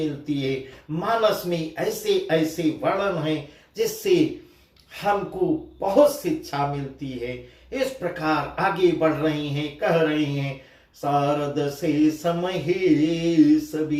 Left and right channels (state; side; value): identical; both; correlation 1.00